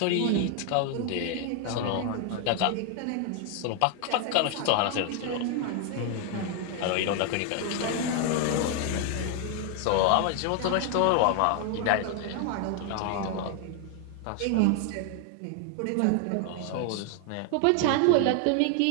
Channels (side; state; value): both; different; correlation 0.00